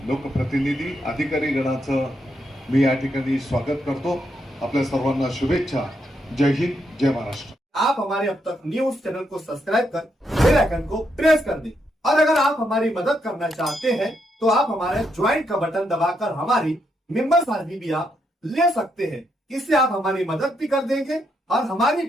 लोकप्रतिनिधी, अधिकारी गणाचं मी या ठिकाणी स्वागत करतो. आपल्या सर्वांना शुभेच्छा. जय हिंद, जय महाराष्ट्र. आप हमारे अब तक न्यूज चैनल को सब्सक्राइब कर बेल आइकन को प्रेस कर दें और अगर आप हमारी मदद करना चाहते हैं तो आप हमारे ज्वाइन का बटन दबाकर हमारी मेंबर्स आईडी भी आप ले सकते हैं. इससे आप हमारी मदद भी कर देंगे और हमारी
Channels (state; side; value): normal; both; correlation 0.79